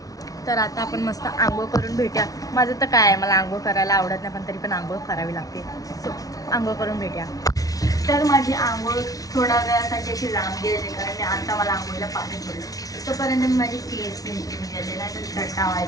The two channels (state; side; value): late; right; 0.18 ms